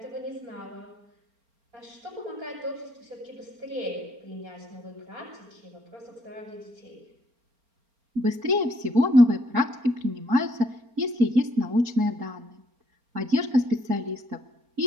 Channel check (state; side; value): late; left; 4.3 ms